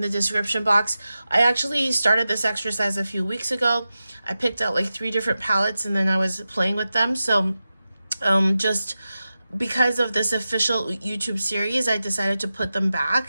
the description box, I actually started this exercise a few weeks ago. I picked out like 3 different palettes, and then I was playing with them. So just because of this official YouTube series, I decided to put them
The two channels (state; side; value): inverted; both; correlation -0.93